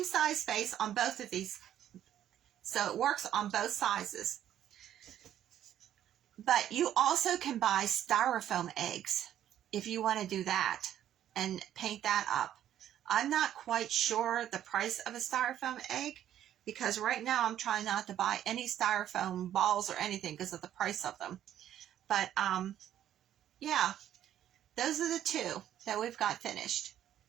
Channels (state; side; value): quieter; left; 11.2 dB